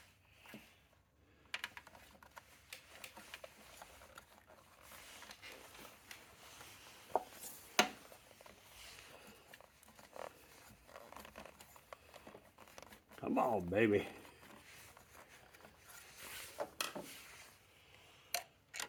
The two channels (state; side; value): identical; both; correlation 1.00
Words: come on, baby.